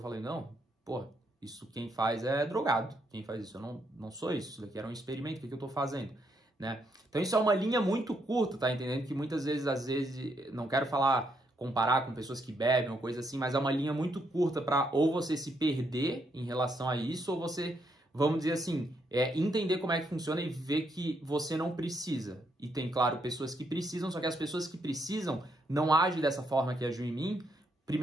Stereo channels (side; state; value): both; normal; correlation 0.76